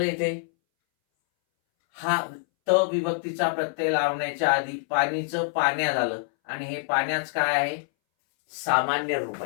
इथे, हा त विभक्तीचा प्रत्यय लावण्याच्या आधी पाणीचं पाण्या झालं आणि हे पाण्याच काय आहे, सामान्य रूप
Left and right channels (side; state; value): right; silent; 61 dB below the other